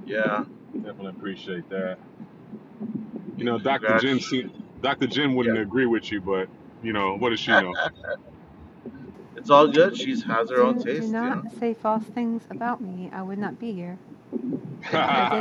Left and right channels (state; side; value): identical; both; correlation 1.00